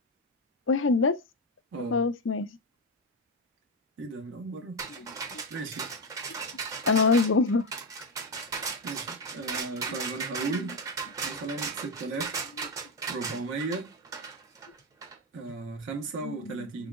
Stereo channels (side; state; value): both; normal; correlation 0.10